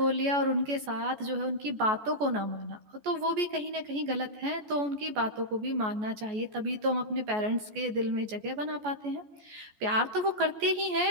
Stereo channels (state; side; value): late; left; 14 ms